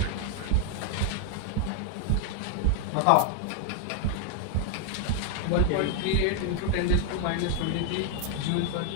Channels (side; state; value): both; different; correlation 0.00